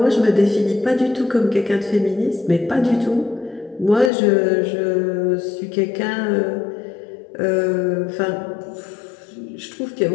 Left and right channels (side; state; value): right; drops out; at 4.1 s